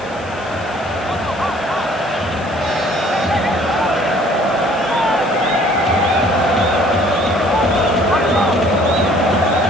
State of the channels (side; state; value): left; noise; hiss, 22 dB below the sound